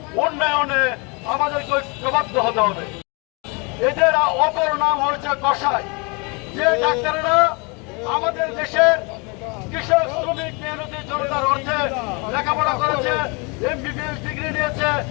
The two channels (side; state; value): right; quieter; 30.8 dB